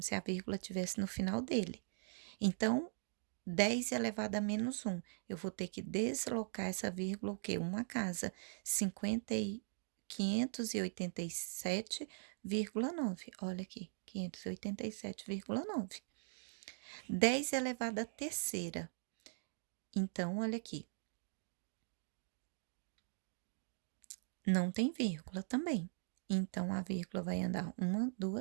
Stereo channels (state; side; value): silent; left; digital silence